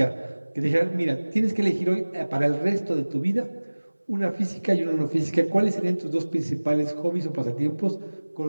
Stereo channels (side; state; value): both; inverted; correlation -1.00